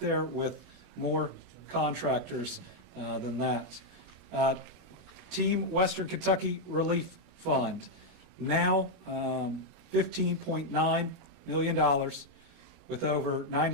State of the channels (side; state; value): left; late; 24 ms